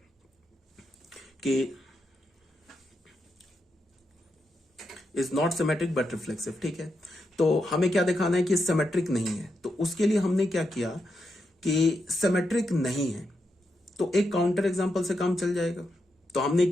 कि is not symmetric but reflexive, ठीक है। तो हमें क्या दिखाना है कि सिमेट्रिक नहीं है, तो उसके लिए हमने क्या किया कि सिमेट्रिक नहीं है तो एक काउंटर एग्जांपल से काम चल जाएगा। तो हमने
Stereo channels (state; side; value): normal; both; correlation 0.84